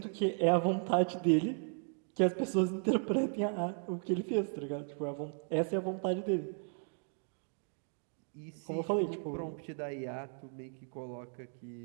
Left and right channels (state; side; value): silent; left; 54 dB below the other